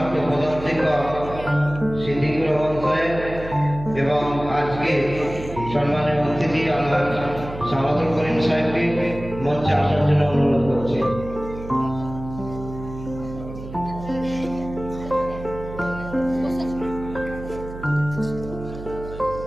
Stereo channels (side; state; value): right; noise; hum, 12 dB below the sound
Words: প্রধান শিক্ষক সিদ্দিকুর রহমান সাহেব এবং আজকে সম্মানীয় অতিথি আলহাজ সামাদুল করিম সাহেবকে মঞ্চে আসার জন্য অনুরোধ করছি।